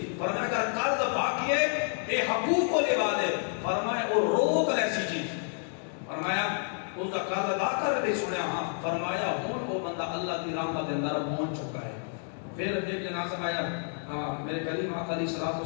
فرمایا اگر قرض باقی ہے اے حقوق کو لے دے فرمایا وہ روک ایسی چیز فرمایا اس کا قرض ادا کر دے سنیا ہاں فرمایا ہون وہ بندہ اللہ کی رحمت اندر پہنچ چکا ہے پھر ایک جنازہ آیا میرے کریم آقا علیہ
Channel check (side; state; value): right; silent; 58 dB below the other